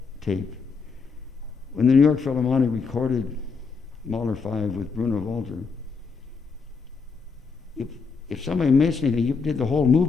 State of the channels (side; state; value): right; quieter; 5.0 dB